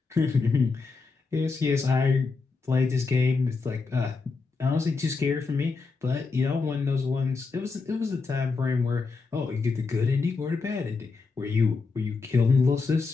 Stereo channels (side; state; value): right; quieter; 4.3 dB